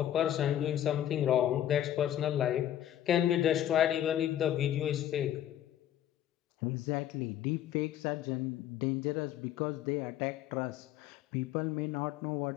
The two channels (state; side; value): quieter; right; 11.5 dB